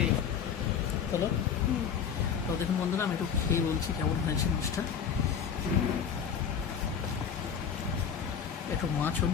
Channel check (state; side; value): quieter; right; 7.4 dB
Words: হলো। তো দেখুন বন্ধুরা, আমি একটু খেয়ে বলছি কেমন হয়েছে মাছটা। একটু মাছও